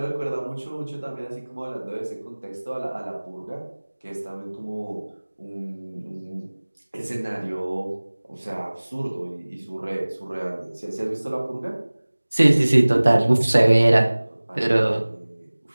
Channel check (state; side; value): inverted; both; correlation -1.00